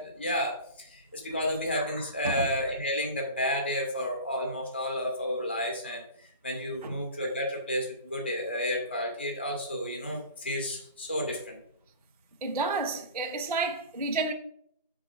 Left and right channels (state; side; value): inverted; both; correlation -0.35